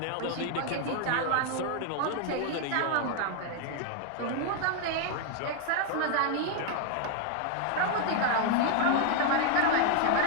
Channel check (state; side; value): different; both; correlation 0.00